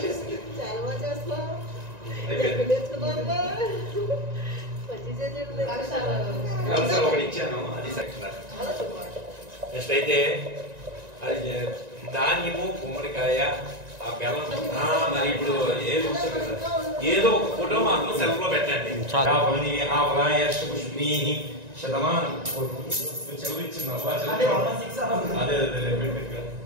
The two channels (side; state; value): left; late; 1.9 ms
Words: చాలా బాగా చేస్తున్నావు ఒకటి ఇచ్చాను అది సెక్షన్ నెక్స్ట్ అయితే అది ధాన్యము గుమ్మడికాయ ఆ బెల్లం మరి ఇప్పుడు ఏది ఉంటుంది కదా ఏదో ఒక ఫోటో మాత్రం సెల్ఫ్ లో పెట్టండి పుష్పీ శతమానం చదివించింది అదే